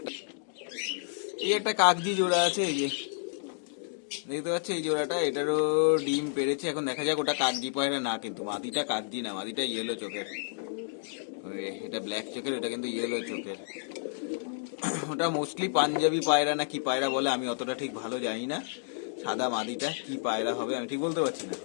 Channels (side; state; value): right; silent; digital silence